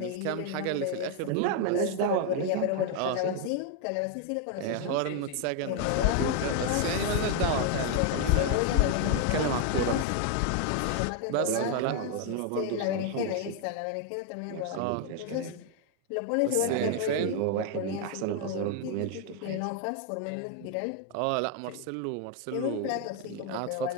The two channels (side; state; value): both; different; correlation 0.00